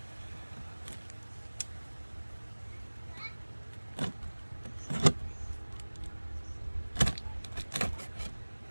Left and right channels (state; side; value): inverted; both; correlation -1.00